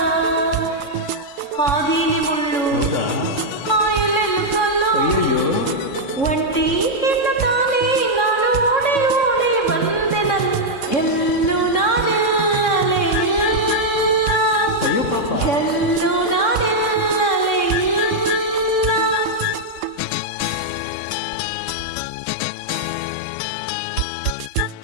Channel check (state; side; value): late; right; 3.6 ms